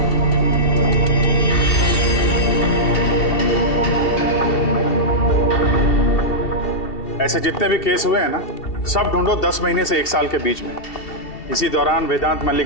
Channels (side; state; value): right; late; 2.7 ms